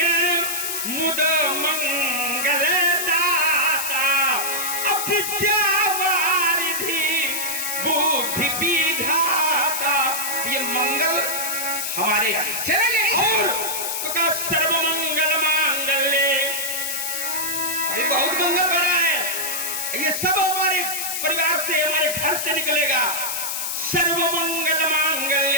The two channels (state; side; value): noise; left; hiss, 2 dB below the sound